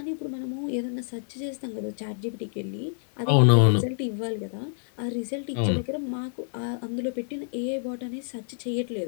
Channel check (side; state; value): right; silent; 59 dB below the other